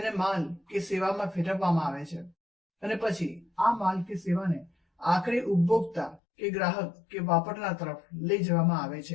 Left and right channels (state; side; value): drops out; right; at 6.2 s